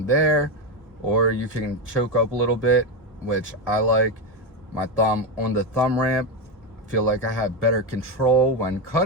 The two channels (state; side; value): normal; both; correlation 0.11